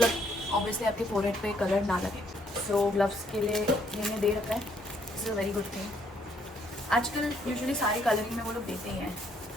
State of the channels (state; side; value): normal; both; correlation 0.69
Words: ऑब्वियसली आपके फोरहेड पे कलर ना लगे। सो ग्लव्स के लिए मैंने दे रखा है, this is a very good thing. आजकल यूजुअली सारी कलरिंग में वो लोग देते ही हैं।